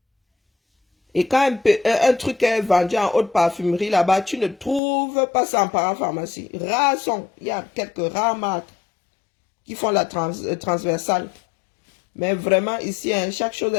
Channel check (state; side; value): drops out; right; at 4.8 s